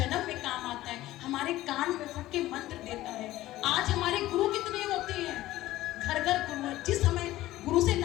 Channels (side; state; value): right; quieter; 15.9 dB